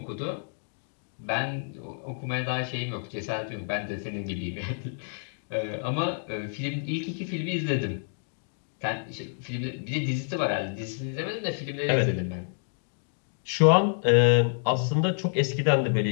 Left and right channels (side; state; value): right; silent; digital silence